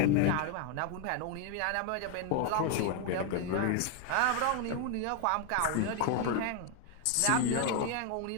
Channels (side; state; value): both; different; correlation 0.01